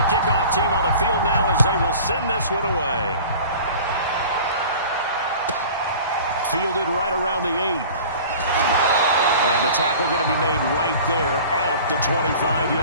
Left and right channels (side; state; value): both; inverted; correlation -0.42